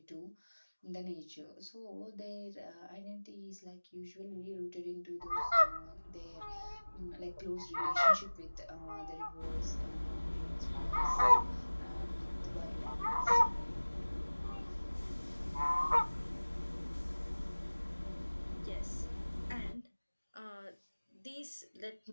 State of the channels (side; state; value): both; inverted; correlation -1.00